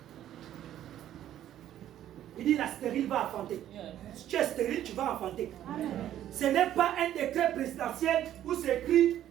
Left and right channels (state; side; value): quieter; left; 11.8 dB